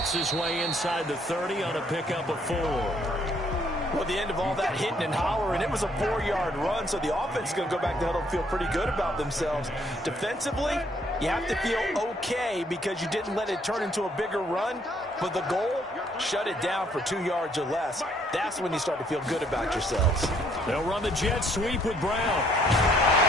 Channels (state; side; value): normal; both; correlation 0.66